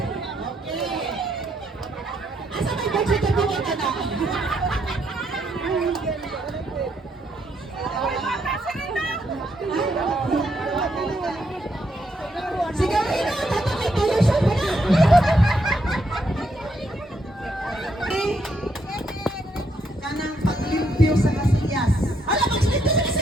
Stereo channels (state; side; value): normal; both; correlation 0.76